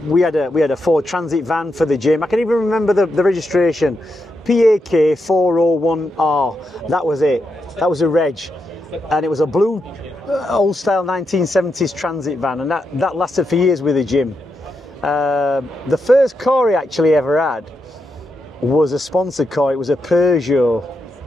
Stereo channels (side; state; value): both; normal; correlation 0.84